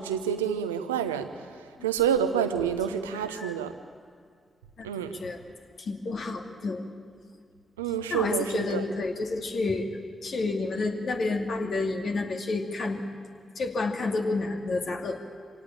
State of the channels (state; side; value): normal; both; correlation 0.45